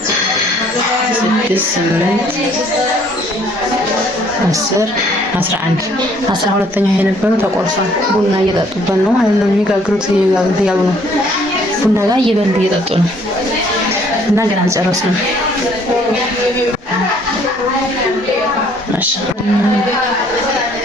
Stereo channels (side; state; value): both; normal; correlation 0.61